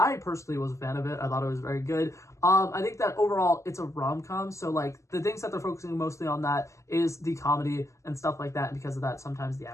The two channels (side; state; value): right; late; 0.14 ms